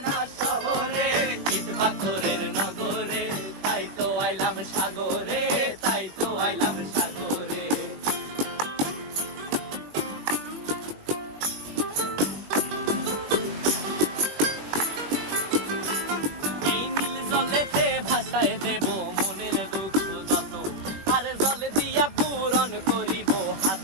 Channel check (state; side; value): late; left; 20 ms